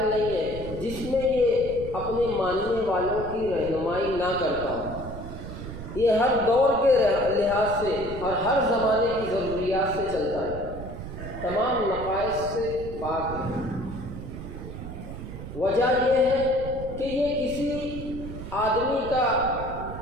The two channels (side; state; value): right; noise; rumble, 10 dB below the sound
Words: نہیں ہے جس میں یہ اپنے ماننے والوں کی رہنمائی نہ کرتا ہو۔ یہ ہر دور کے لحاظ سے اور ہر زمانے کی ضروریات سے چلتا ہے، تمام نقائص سے پاک ہے۔ وجہ یہ ہے کہ یہ کسی آدمی کا،